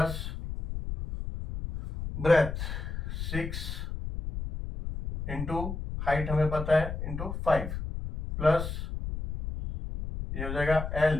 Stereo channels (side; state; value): left; noise; rumble, 6 dB below the sound